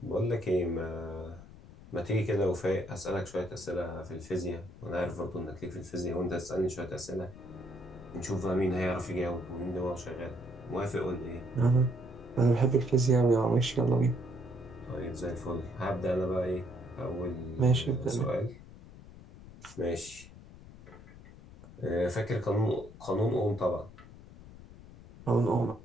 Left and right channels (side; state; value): left; noise; rumble, 18 dB below the sound